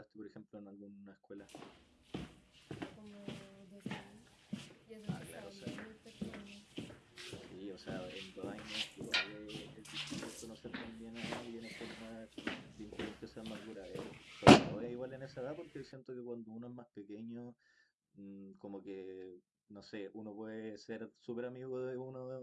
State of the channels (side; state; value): both; identical; correlation 1.00